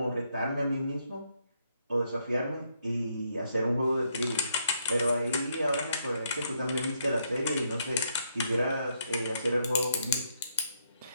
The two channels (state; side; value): inverted; both; correlation -0.76